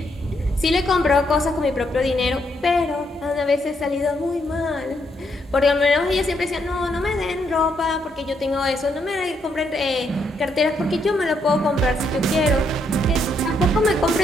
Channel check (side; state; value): both; normal; correlation 0.75